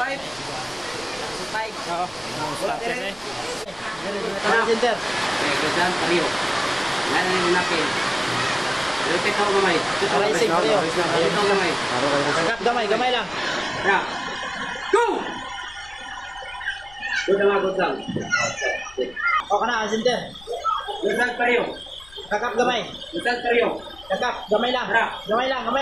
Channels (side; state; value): left; noise; rumble, 22 dB below the sound